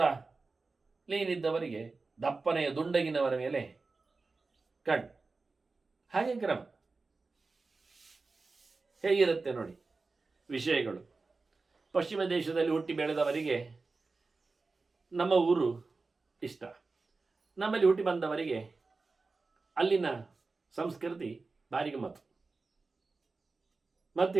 ಲೀನಿದ್ದವರಿಗೆ ದಪ್ಪನೆಯ ದುಂಡಗಿನವರ ಮೇಲೆ ಕಣ್ಣು. ಹಾಗೆ ಕ್ರಮ ಹೇಗಿರುತ್ತೆ ನೋಡಿ ವಿಷಯಗಳು. ಪಶ್ಚಿಮ ದೇಶದಲ್ಲಿ ಹುಟ್ಟಿ ಬೆಳೆದವರಿಗೆ ನಮ್ಮ ಊರು ಇಷ್ಟ, ನಮ್ಮಲ್ಲಿ ಹುಟ್ಟಿ ಬಂದವರಿಗೆ ಅಲ್ಲಿನ ಸಂಸ್ಕೃತಿ ಭಾರಿ ಗಮ್ಮತ್ತು. ಮತ್ತು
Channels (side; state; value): left; quieter; 3.9 dB